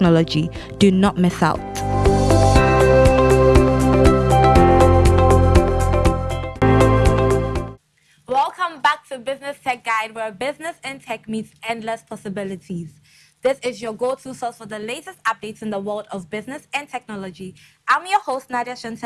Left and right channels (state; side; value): identical; both; correlation 1.00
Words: Do not miss out. Welcome back to Business Tech Guide, where business and tech meets endless possibilities. This is your go-to source for the latest updates in the world of business and technology. I'm your host, Nadia